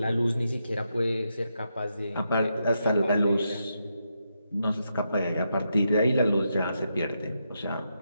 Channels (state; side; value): inverted; both; correlation -0.83